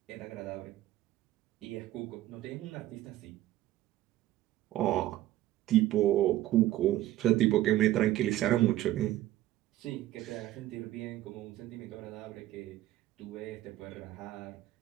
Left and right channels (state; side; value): quieter; left; 14.5 dB